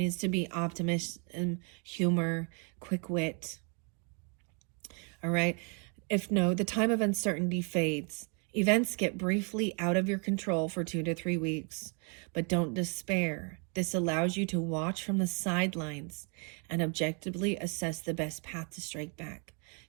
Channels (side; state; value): left; quieter; 37.0 dB